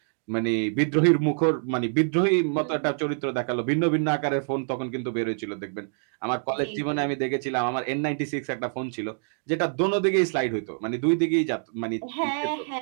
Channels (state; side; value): silent; left; digital silence